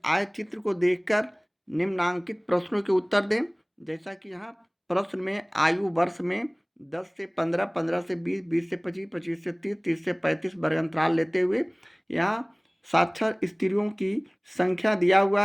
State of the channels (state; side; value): identical; both; correlation 1.00